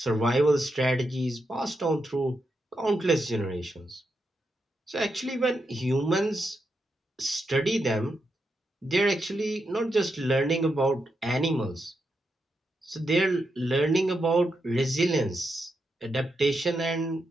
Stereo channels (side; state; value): both; normal; correlation 0.84